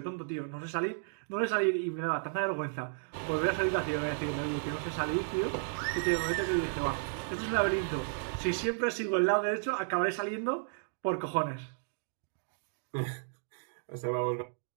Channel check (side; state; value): left; silent; digital silence